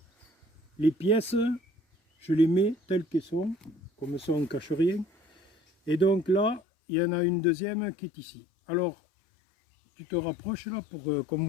les pièces, je les mets telles qu'elles sont. Comme ça, on ne cache rien. Et donc là, il y en a une deuxième qui est ici. Alors, tu te rapproches là pour qu'on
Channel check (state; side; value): drops out; right; at 6.6 s